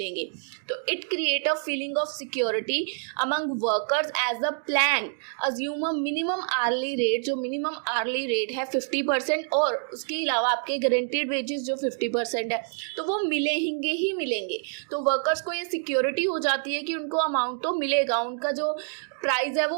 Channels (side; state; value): left; silent; digital silence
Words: तो it create a feeling of security among workers as a plan assume a minimum hourly rate. जो मिनिमम आर्ली रेट है 50%, और उसके अलावा आपके गारंटीड वेजेस जो 50% है, तो वो मिलेंगे ही मिलेंगे। तो वर्कर्स को ये सिक्योरिटी हो जाती है कि उनको अमाउंट तो मिलेगा, उनका जो प्राइस है